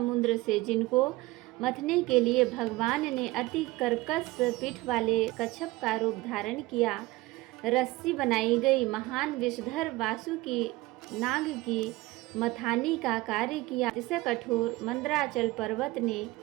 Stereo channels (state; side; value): quieter; left; 20.0 dB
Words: से, जिनको मथने के लिए भगवान ने अति कर्कश पीठ वाले कच्छप का रूप धारण किया। रस्सी बनाई गई, महान विषधर वासुकी नाग की मथानी का कार्य किया। इसे कठोर मंदराचल पर्वत ने